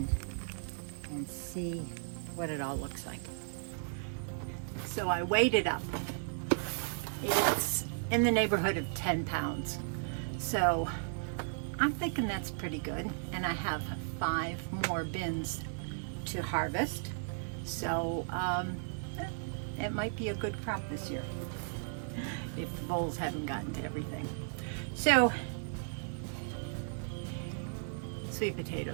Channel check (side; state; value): left; silent; digital silence